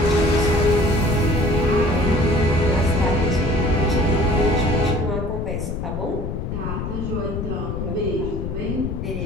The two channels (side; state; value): left; noise; rumble, 4 dB below the sound